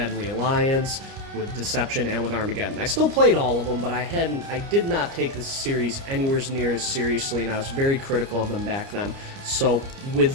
Alliance, with Deception, and with Armageddon. I still played all of them, but I did not take this series anywhere near as seriously, and I was very critical of them back then. So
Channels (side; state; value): left; late; 30 ms